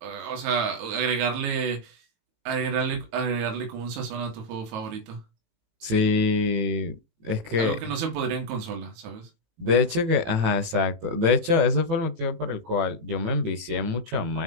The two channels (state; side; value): late; left; 18 ms